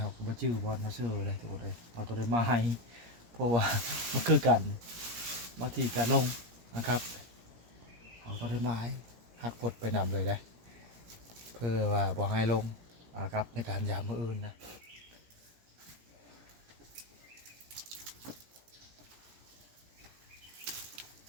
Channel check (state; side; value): late; left; 17 ms